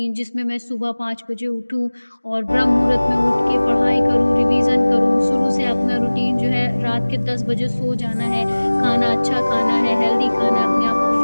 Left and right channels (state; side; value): inverted; both; correlation -1.00